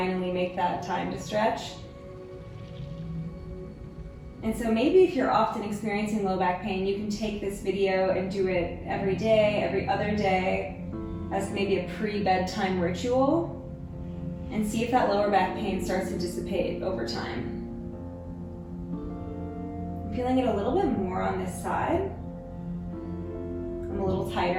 make that time to stretch. And so maybe if you're often experiencing low back pain, you can take this video and do it every day, every other day, as maybe a pre-bedtime ritual, and see if that lower back pain starts to dissipate over time. I'm feeling it a little bit more on this side. I'm a little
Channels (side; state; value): both; identical; correlation 1.00